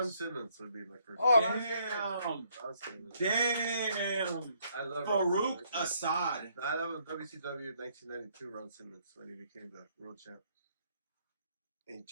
Simmons would be my first. Oh, pick. Ron Damn. Ron Simmons. Damn. I love Ron Farouk Simmons. Assad. I love WCW 1992 Ron Simmons when he became the world champ. And he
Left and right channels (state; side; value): inverted; both; correlation -0.69